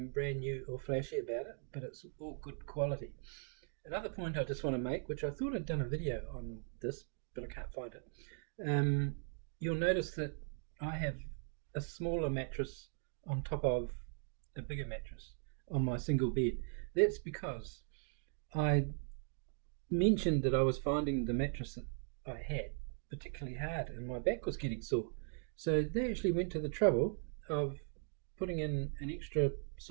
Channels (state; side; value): silent; left; 52 dB below the other